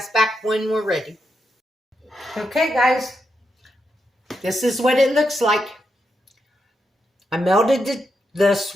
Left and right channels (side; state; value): both; normal; correlation 0.84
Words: back when we're ready. Okay guys, this is what it looks like. I melted the